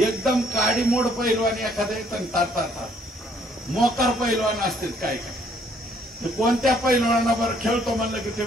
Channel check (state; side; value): normal; both; correlation 0.65